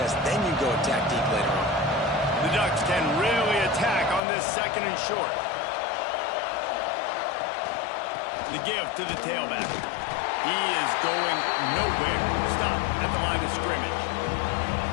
Then you go attack deep later on. The Ducks can really attack on this 2nd and short. The give to the tailback. He is going nowhere. Stop at the line of scrimmage.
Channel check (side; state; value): right; drops out; at 4.2 s